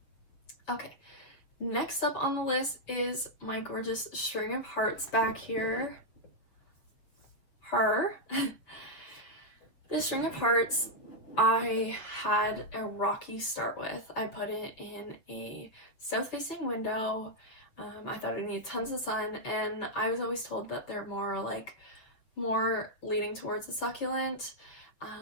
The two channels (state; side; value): late; right; 7.2 ms